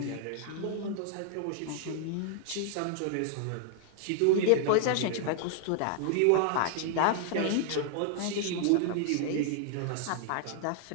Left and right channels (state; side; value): different; both; correlation -0.01